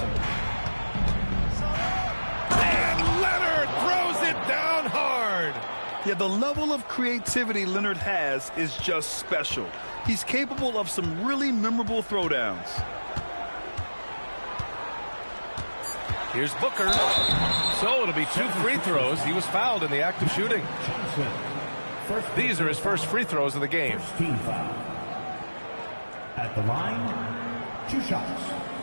And Leonard throws it down hard. Yeah, the level of creativity Leonard has is just special. He's capable of some really memorable throwdowns. Here's Booker. So it'll be 2 free throws. He was fouled in the act of shooting. These are his first free throws of the game. Team foul. At the line, 2 shots.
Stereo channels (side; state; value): both; inverted; correlation -1.00